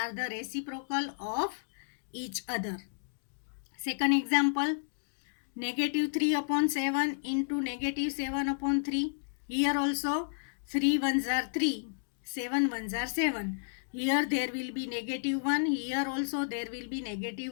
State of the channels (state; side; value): silent; right; digital silence